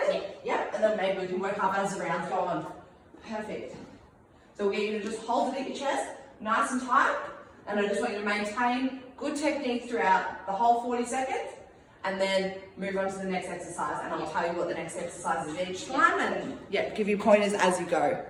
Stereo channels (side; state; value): both; identical; correlation 1.00